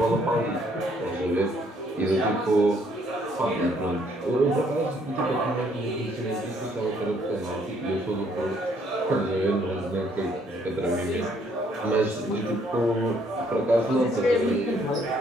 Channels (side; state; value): both; normal; correlation 0.66